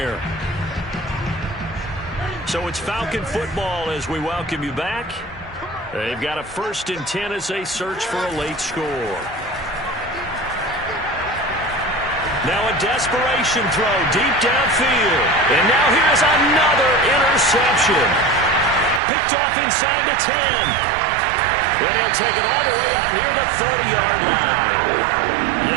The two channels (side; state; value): left; drops out; at 19.0 s